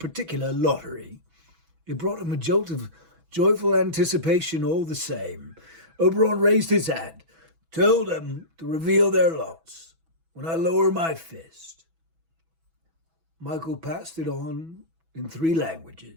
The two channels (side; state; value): left; late; 6.1 ms